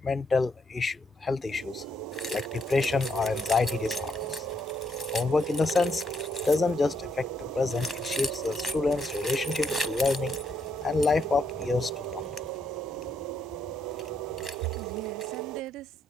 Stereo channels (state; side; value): normal; both; correlation 0.75